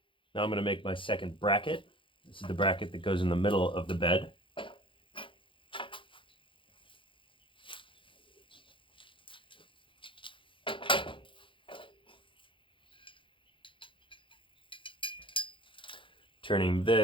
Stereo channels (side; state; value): right; late; 0.25 ms